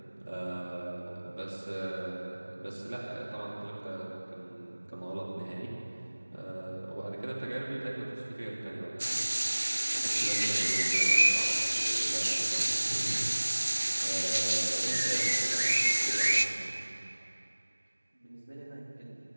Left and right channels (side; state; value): both; inverted; correlation -1.00